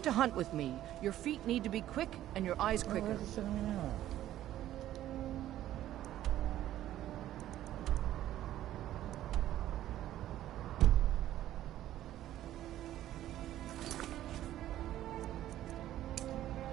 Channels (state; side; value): quieter; left; 13.1 dB